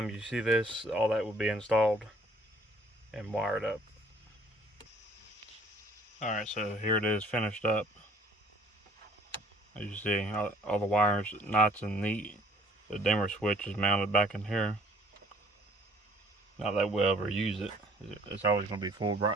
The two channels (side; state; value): both; normal; correlation 0.57